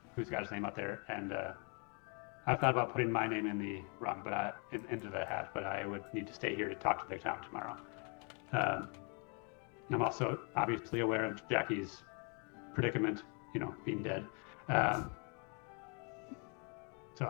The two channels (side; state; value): right; quieter; 36.3 dB